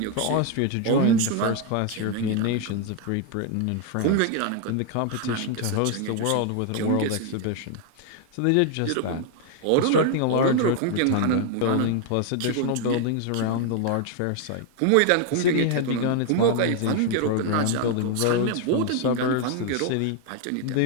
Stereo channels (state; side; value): different; both; correlation 0.00